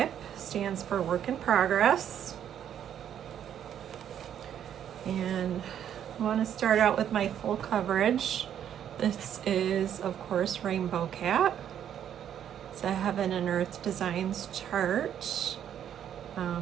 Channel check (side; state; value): left; quieter; 9.7 dB